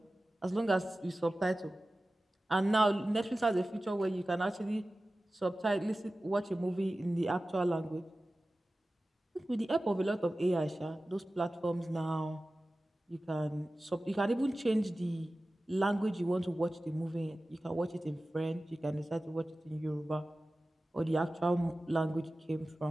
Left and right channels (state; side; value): normal; both; correlation 0.96